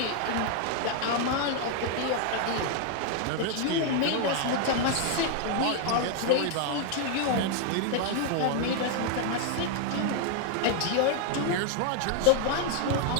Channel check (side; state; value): both; different; correlation 0.00